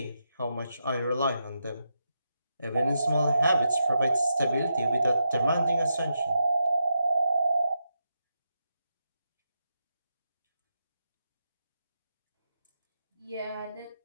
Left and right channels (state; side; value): inverted; both; correlation -0.85